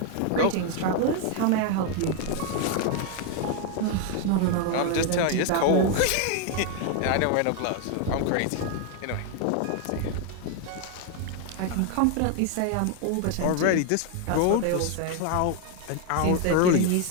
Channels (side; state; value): both; different; correlation 0.01